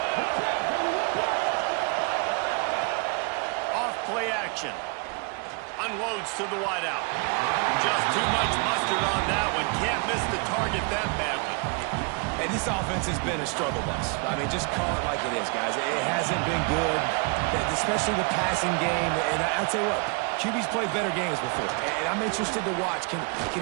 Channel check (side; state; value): left; quieter; 32.6 dB